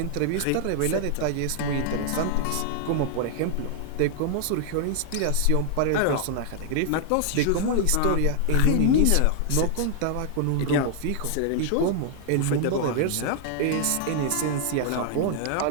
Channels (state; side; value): different; both; correlation 0.00